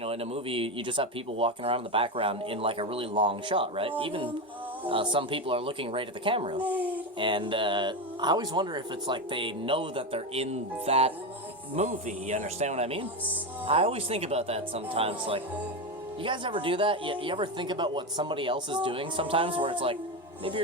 know, in a movie, you just have people walking around in the background in, like, a really long shot, right? Even some people are looking right at the camera. And I always wonder if it's like they know that they're in that movie, you understand what I mean? I always think about that sometimes, like, you guys ever do that? You ever think about what somebody else is doing sometimes, where it's like, maybe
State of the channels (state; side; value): normal; both; correlation 0.14